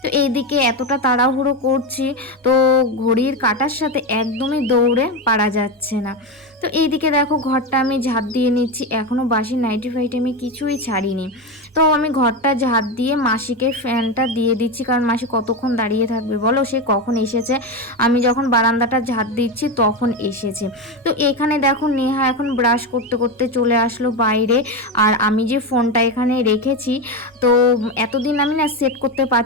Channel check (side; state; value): both; normal; correlation 0.15